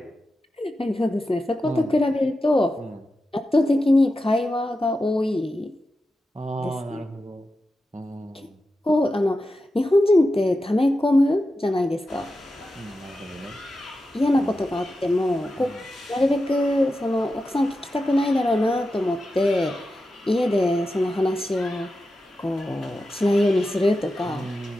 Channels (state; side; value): normal; both; correlation 0.91